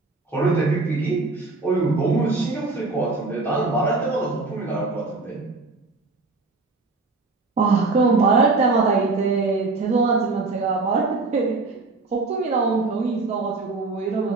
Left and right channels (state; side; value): quieter; left; 3.6 dB